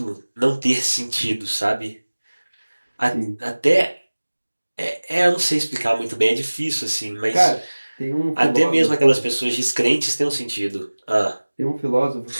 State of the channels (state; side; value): inverted; both; correlation -1.00